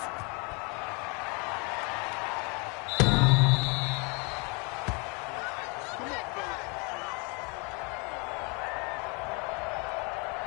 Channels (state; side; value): quieter; right; 32.2 dB